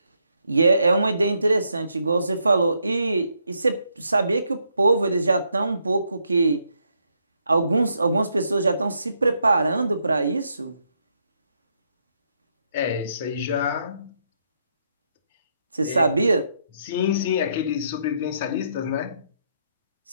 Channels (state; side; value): inverted; both; correlation -0.76